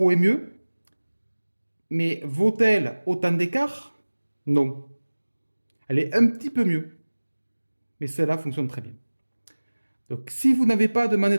est mieux. Mais vaut-elle autant d'écart? Non. Elle est un petit peu mieux. Mais celle-là fonctionne très bien. Donc, si vous n'avez pas de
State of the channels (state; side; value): inverted; both; correlation -1.00